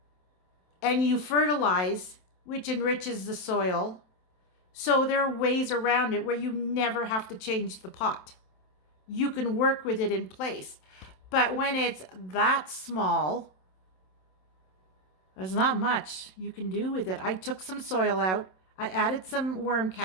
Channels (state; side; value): late; right; 27 ms